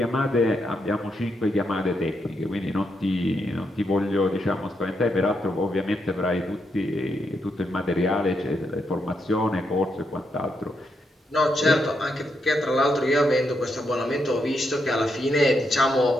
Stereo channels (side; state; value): both; normal; correlation 0.81